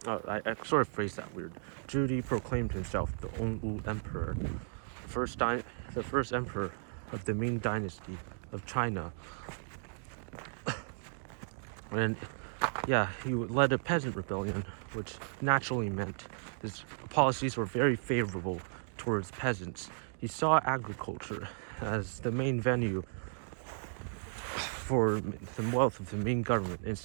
I sort of phrased that weird. Zhu Di proclaimed himself the Onwu Emperor, the first emperor of the Ming Dynasty of China. And yeah, he led a peasant rebellion, which naturally meant his policies were very favorable towards peasants. He saw agriculture as the main venue for the wealth of the Ming government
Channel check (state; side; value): silent; left; digital silence